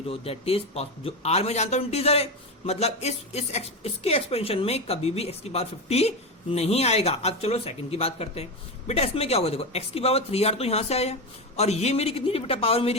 दैट इज जो r में जानता हूं इंटीजर है, मतलब इसके एक्सपेंशन में कभी भी x की पावर 50 नहीं आएगा। अब चलो सेकंड की बात करते हैं। बेटा इसमें क्या होगा? देखो x की पावर 3r तो यहां से आया और ये मेरी कितनी थी बेटा? पावर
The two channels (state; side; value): normal; both; correlation 0.16